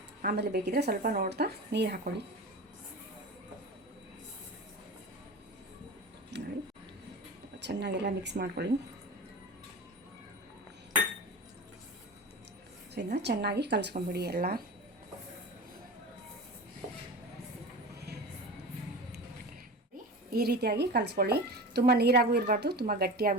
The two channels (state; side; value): normal; both; correlation 0.31